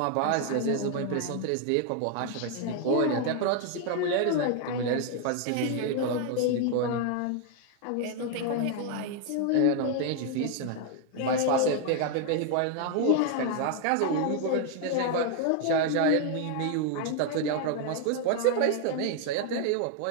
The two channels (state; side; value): different; both; correlation 0.00